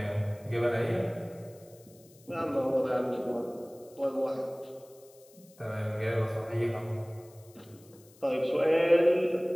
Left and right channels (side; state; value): left; noise; hiss, 26 dB below the sound